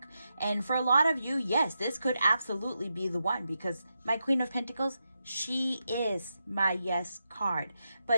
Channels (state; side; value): inverted; both; correlation -0.87